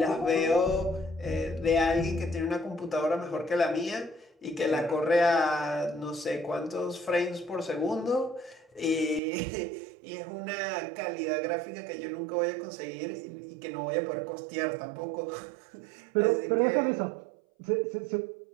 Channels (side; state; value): left; drops out; at 9.2 s